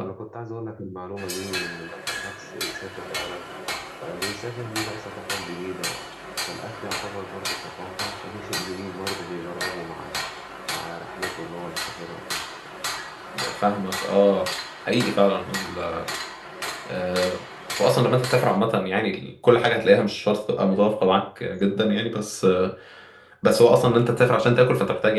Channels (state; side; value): identical; both; correlation 1.00